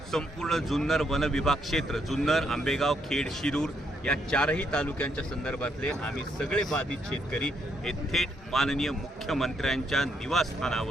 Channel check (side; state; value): both; normal; correlation 0.75